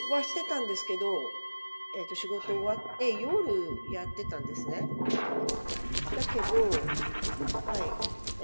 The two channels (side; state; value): both; inverted; correlation -1.00